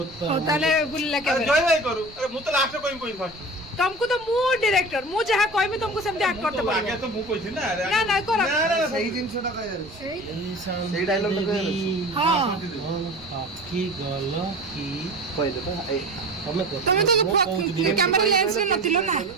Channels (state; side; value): noise; right; rumble, 21 dB below the sound